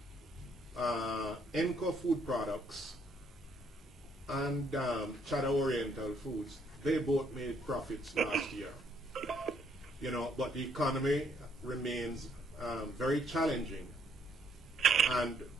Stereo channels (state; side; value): normal; both; correlation 0.69